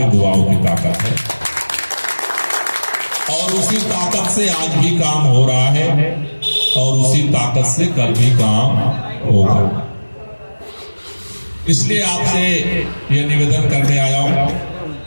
दुआओं की ताकत है, और उसी ताकत से आज भी काम हो रहा है, और उसी ताकत से कल भी काम होगा। इसलिए आपसे ये निवेदन करने आया हूं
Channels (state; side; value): inverted; both; correlation -1.00